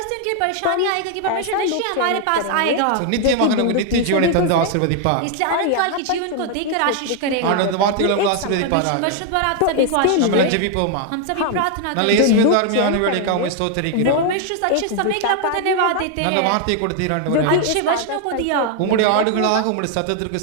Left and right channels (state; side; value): different; both; correlation 0.00